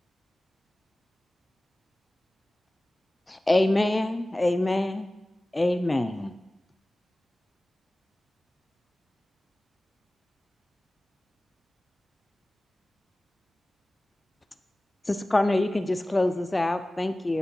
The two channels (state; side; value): normal; both; correlation 0.97